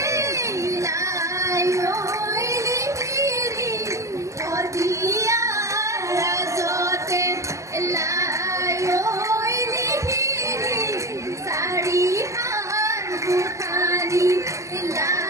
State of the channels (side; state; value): left; late; 0.15 ms